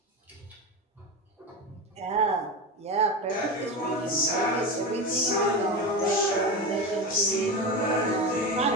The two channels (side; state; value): both; normal; correlation 0.21